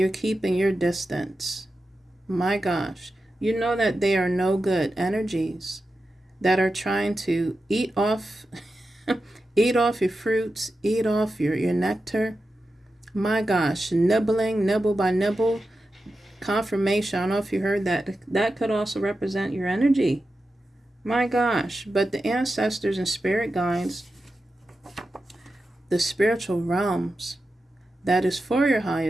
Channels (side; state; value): both; normal; correlation 0.91